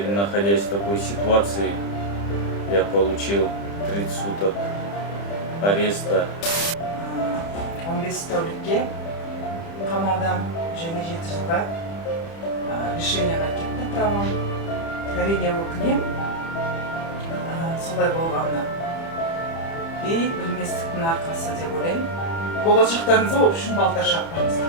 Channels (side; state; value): right; late; 30 ms